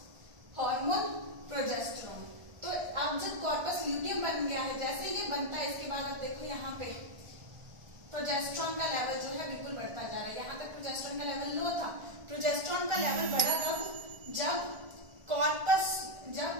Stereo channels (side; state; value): left; late; 1.4 ms